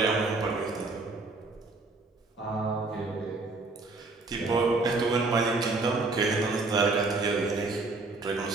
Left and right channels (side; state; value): left; quieter; 3.5 dB